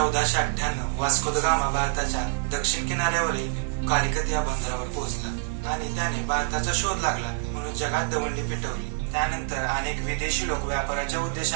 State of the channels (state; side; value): silent; left; 60 dB below the other